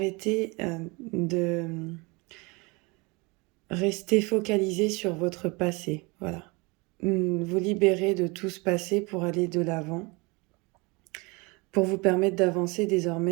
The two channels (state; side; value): quieter; left; 26.9 dB